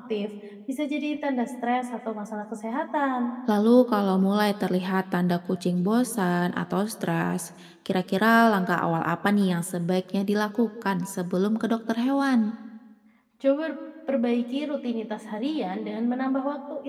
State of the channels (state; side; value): identical; both; correlation 1.00